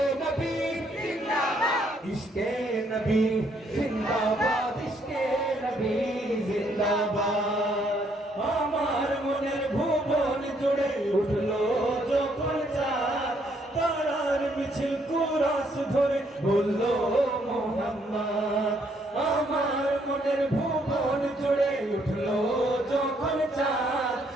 नबी जिंदाबाद इश्क़े नबी जिंदाबाद इश्क़े नबी जिंदाबाद আমার মনের ভুবন জুড়ে উঠলো যখন চাঁদ তারার মিছিল কুরাস ধরে বললো মোহাম্মদ আমার মনের ভুবন জুড়ে উঠলো যখন চাঁদ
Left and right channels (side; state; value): both; normal; correlation 0.70